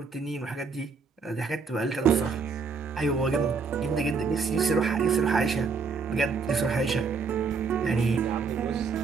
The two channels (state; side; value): quieter; left; 5.0 dB